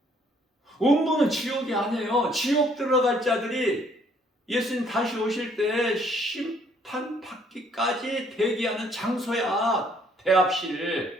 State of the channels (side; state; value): both; normal; correlation 0.64